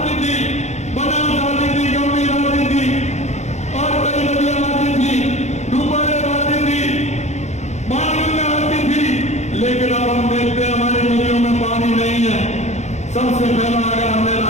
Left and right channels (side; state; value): right; late; 0.33 ms